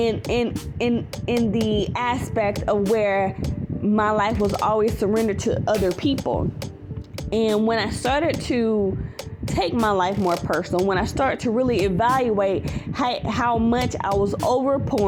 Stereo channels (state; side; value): identical; both; correlation 1.00